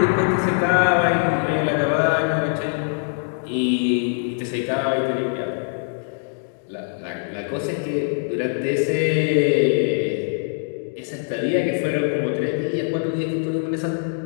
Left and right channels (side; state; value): right; silent; digital silence